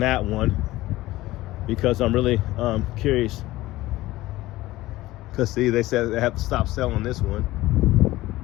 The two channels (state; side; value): quieter; right; 17.5 dB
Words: one, because I'm really curious. Because see, they said they have to stop selling this one.